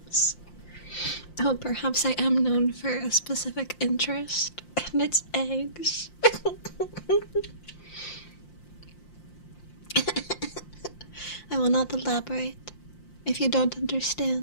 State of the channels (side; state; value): right; late; 5.7 ms